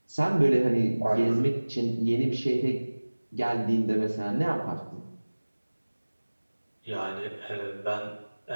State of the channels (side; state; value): both; inverted; correlation -1.00